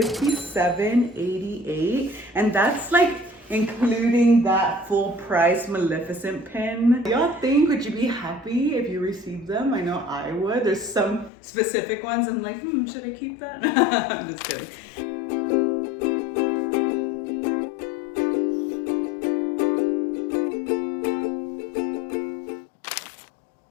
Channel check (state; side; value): drops out; right; at 11.3 s